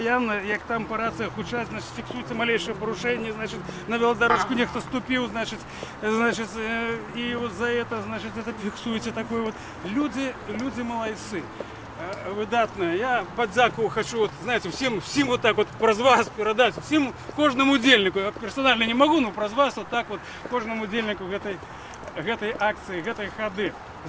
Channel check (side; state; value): both; identical; correlation 1.00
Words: як там по раціях учать, значить, фіксується малейше порушення, значить, на велодорожку ніхто ступив, значить, і от за це, значить, це фіксується таке от. Люди молодці. Видатно. Я подяку хочу, вот, знаете, всем вот так вот про вас передать, всем, кожному удельнику, я персонально не могу, но про вас вот так вот, кожному удельнику этой акции, этой ходы.